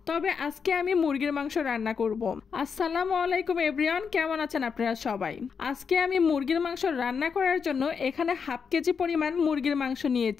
তবে আজকে আমি মুরগির মাংস রান্না করব। আসসালামু আলাইকুম এভরিওয়ান, কেমন আছেন আপনারা সবাই? আজকে আমি মুরগির মাংস রান্না করার জন্য এখানে হাফ কেজি পরিমাণ মুরগির মাংস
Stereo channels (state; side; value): quieter; right; 6.1 dB